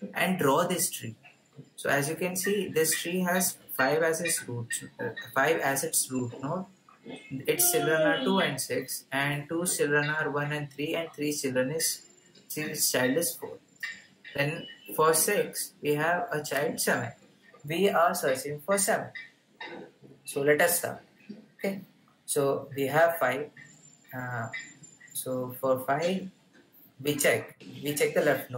and draw this tree. So as you can see, this tree has 5 as its root node. Its children are 2 and 6, and 2 children are 1 and 3, and 3 child is 4. Then for 6, we have a child 7. We are searching for 7. So let us start. Okay. So we have 5. So for 5, we check the left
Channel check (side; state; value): both; identical; correlation 1.00